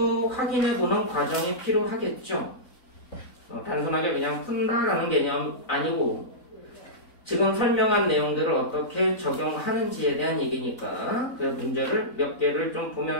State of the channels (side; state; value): right; late; 3.9 ms